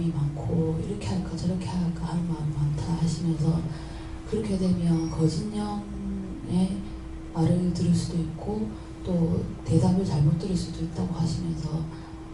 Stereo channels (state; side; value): identical; both; correlation 1.00